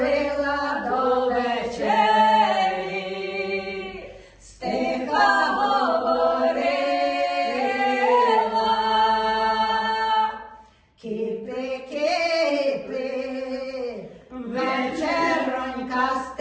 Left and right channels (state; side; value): identical; both; correlation 1.00